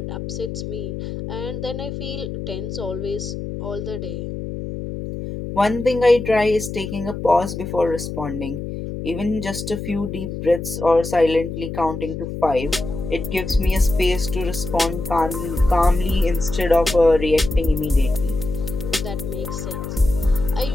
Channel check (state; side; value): noise; left; hum, 6 dB below the sound